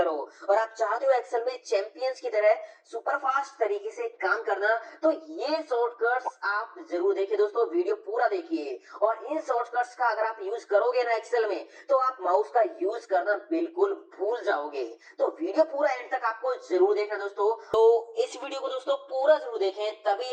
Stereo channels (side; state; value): both; identical; correlation 1.00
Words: हो और आप चाहते हो एक्सेल में चैंपियंस की तरह सुपर फास्ट तरीके से काम करना, तो ये शॉर्टकट्स आप जरूर देखिए दोस्तों, वीडियो पूरा देखिए। और इन शॉर्टकट्स का अगर आप यूज करोगे ना एक्सेल में, तो आप माउस का यूज करना बिल्कुल भूल जाओगे। तो वीडियो पूरा एंड तक आपको जरूर देखना दोस्तों। तो इस वीडियो को दोस्तों पूरा जरूर देखें, तभी